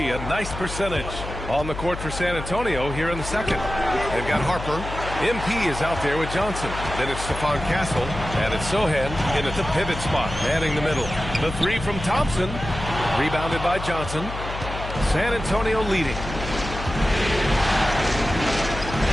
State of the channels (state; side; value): noise; left; hum, 8 dB below the sound